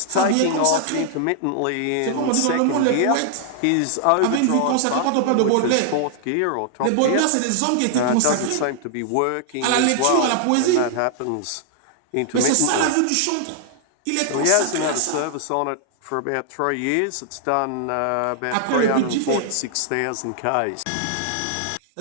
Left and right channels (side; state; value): both; different; correlation -0.01